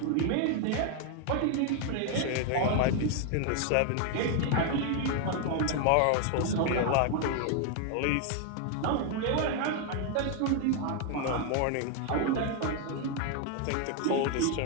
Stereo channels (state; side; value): different; both; correlation 0.00